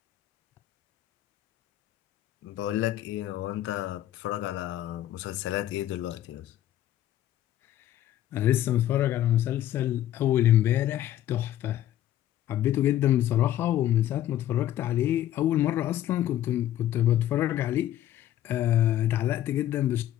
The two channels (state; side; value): quieter; right; 12.6 dB